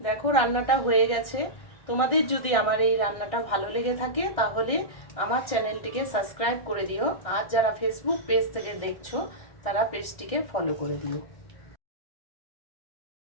দেখো রান্নাটা হয়ে গেছে। তোমাদের যদি আমার এই রান্নাটা ভালো লেগে থাকে তাহলে আমার চ্যানেলটিকে সাবস্ক্রাইব করে দিও, আর যারা ফেসবুক পেজ থেকে দেখছো তারা পেজটিকে ফলো করে দিও।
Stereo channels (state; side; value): late; right; 1.6 ms